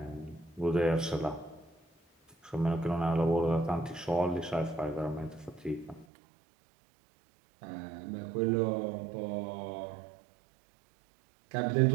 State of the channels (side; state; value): left; drops out; at 6.1 s